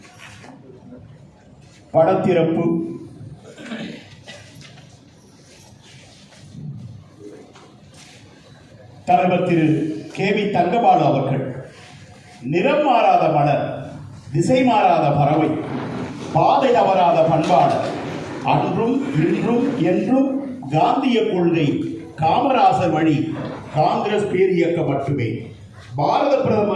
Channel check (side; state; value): both; identical; correlation 1.00